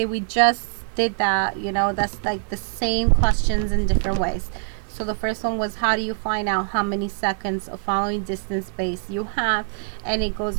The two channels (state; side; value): silent; left; 63 dB below the other